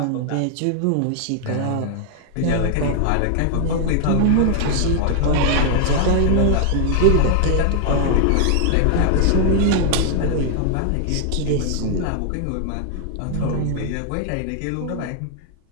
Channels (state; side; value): different; both; correlation 0.00